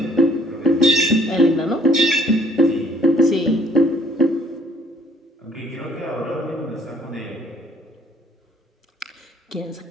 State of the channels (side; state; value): both; normal; correlation 0.60